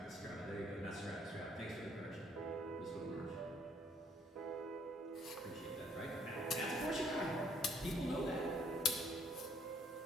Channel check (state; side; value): normal; both; correlation 0.64